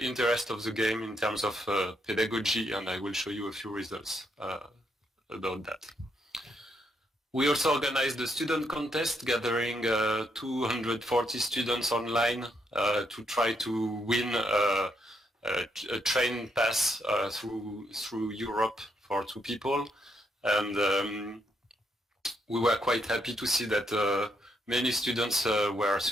interest of the game in terms of pedagogy, and I will show you a few results about that. We also organized a student contest, gathering 240 students online to try to win a train pass through Europe for 2 people. And we were quite happy to see that many students were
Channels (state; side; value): normal; both; correlation 0.77